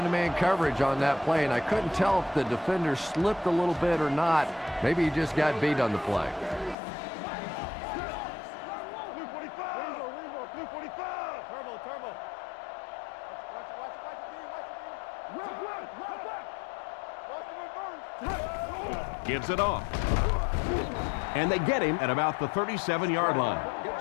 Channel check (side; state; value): right; drops out; at 6.8 s